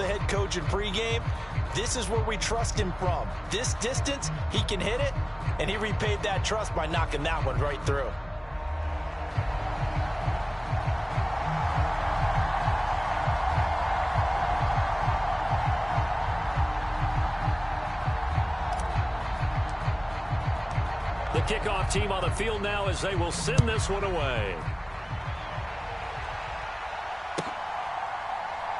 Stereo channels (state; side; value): identical; both; correlation 1.00